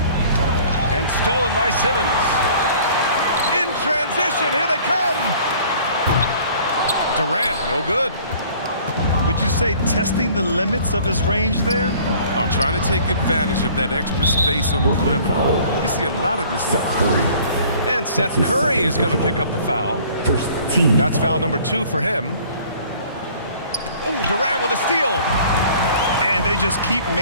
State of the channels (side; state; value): both; inverted; correlation -0.52